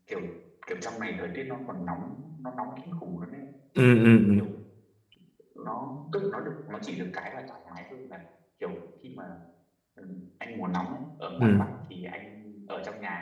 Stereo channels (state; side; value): identical; both; correlation 1.00